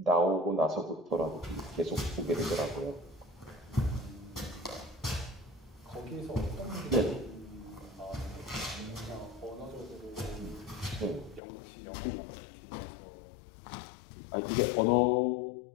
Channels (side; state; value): right; drops out; at 11.4 s